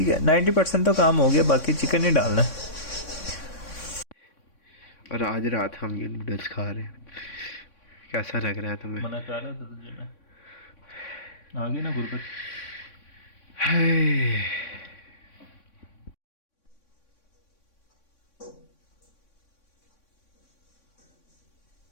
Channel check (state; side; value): late; right; 3.6 ms